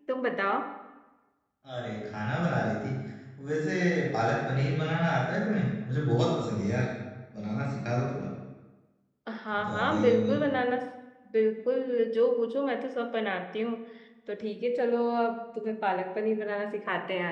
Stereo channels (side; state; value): both; identical; correlation 1.00